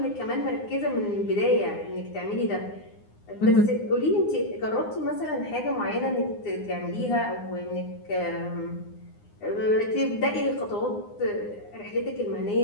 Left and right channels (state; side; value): late; right; 9.7 ms